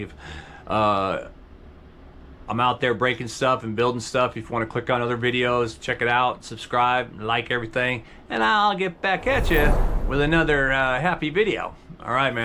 I'm out there breaking stuff and building stuff. If you want to click on other videos, check it out, subscribe, like everything, and I'll get back at you with another happy video. All right,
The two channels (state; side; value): identical; both; correlation 1.00